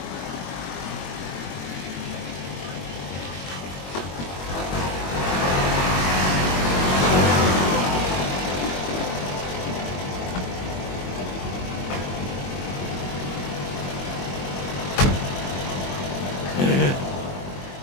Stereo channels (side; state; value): right; late; 22 ms